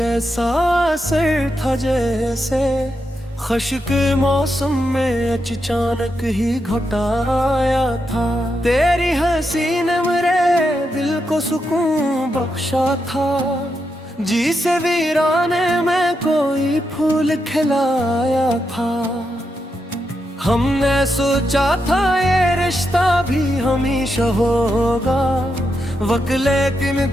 ऐसा असर था जैसे खश के मौसम में अचानक ही घटाया था। तेरी हंसी ने मेरे दिल को सुकून बख्शा था, जिसे वीराने में कोई फूल खिलाया था। हमने सोचा था ये रिश्ता भी हमेशा होगा वक्त, लेकिन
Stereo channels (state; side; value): normal; both; correlation 0.84